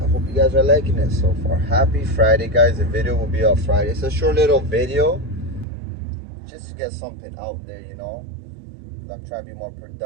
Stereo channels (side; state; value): left; drops out; at 5.7 s